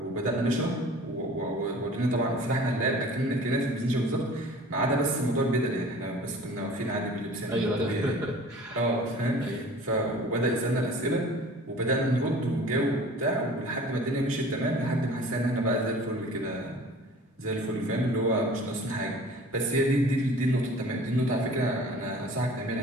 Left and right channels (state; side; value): normal; both; correlation 0.45